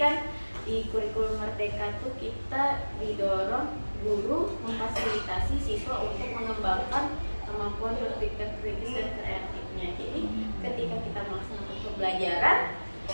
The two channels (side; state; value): both; inverted; correlation -1.00